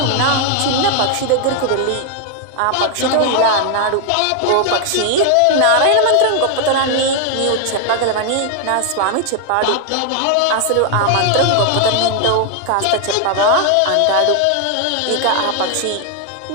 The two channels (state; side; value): different; both; correlation 0.00